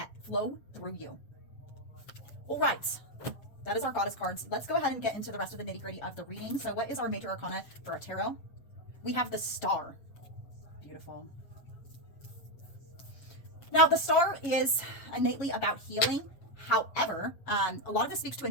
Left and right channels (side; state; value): right; late; 7.6 ms